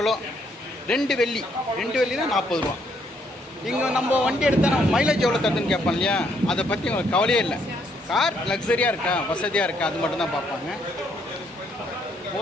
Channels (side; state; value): both; normal; correlation 0.71